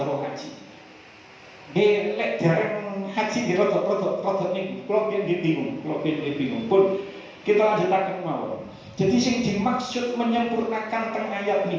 haji. Lek dereng haji di rodok niku. Kalau bingung pun kita lanjutaken mawon. Jadi sing dimaksud menyempurnakan teng ayat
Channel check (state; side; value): identical; both; correlation 1.00